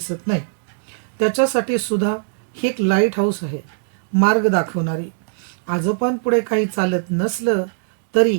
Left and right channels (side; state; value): left; silent; digital silence